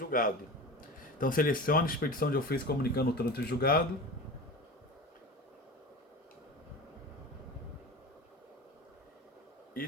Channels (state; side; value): normal; both; correlation 0.31